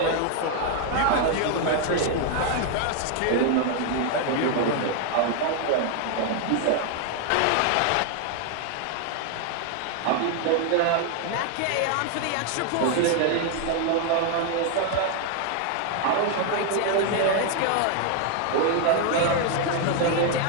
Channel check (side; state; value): both; different; correlation 0.00